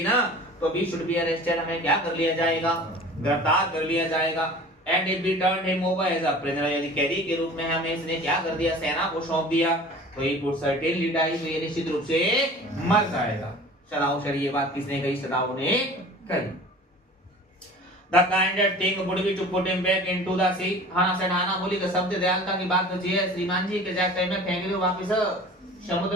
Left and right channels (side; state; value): both; normal; correlation 0.42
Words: ना, तो we should be arrested, हमें क्या कर लिया जाएगा, गिरफ्तार कर लिया जाएगा। And if we turned him over as a prisoner, यदि कैदी के रूप में हमें इसने क्या कर दिया, सेना को सौंप दिया, तो he would certainly die, तो ये निश्चित रूप से मर जाएगा। सदाव सर ये बात किसने कही, सदाव ने कही। The kindest thing would be to put him back into the sea. हाना से हाना बोली कि शब्द दयालुता की बात तो है श्रीमान जी, के जाके में फेंक दो, वापस